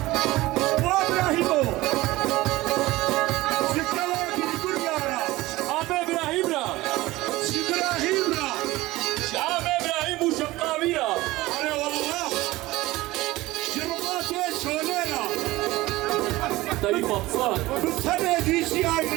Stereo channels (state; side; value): quieter; left; 18.7 dB